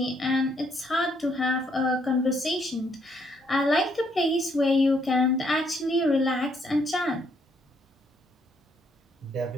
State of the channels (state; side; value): normal; both; correlation 0.71